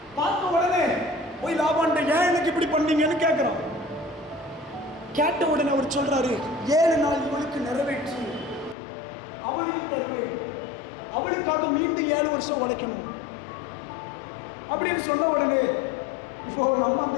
பார்த்த உடனே போய் லாபான்ட்ட ஏன் எனக்கு இப்படி பண்ணீங்கன்னு கேட்கிறான். கேட்ட உடனே அவர் சொல்றாரு, 7 நாள் இவளுக்கு நிறைவேற்று, அவளுக்கு தருவேன், அவளுக்காக மீண்டும் 7 வருஷம் உழைக்கணும் அப்படின்னு சொன்ன உடனே, இப்போ நம்ம அந்த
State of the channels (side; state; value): right; drops out; at 8.8 s